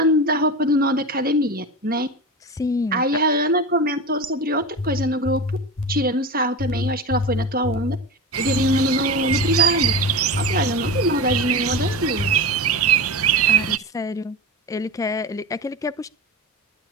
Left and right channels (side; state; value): both; normal; correlation 0.25